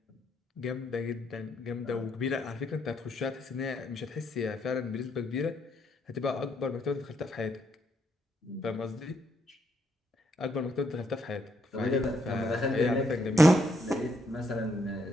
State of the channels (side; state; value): both; normal; correlation 0.75